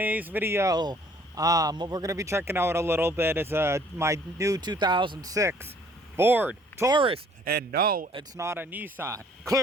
video, what we're gonna be checking out a little bit is my new 2006 Ford Taurus, and no, it's not a Nissan.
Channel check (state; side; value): normal; both; correlation 0.58